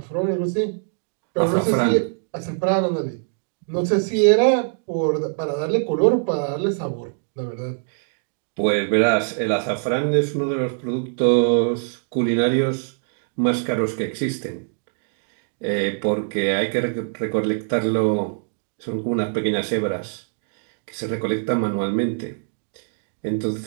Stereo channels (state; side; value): silent; left; digital silence